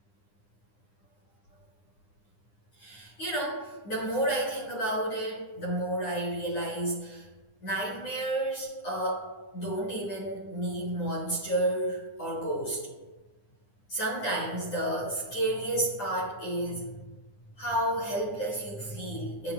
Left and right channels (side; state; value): right; late; 9.8 ms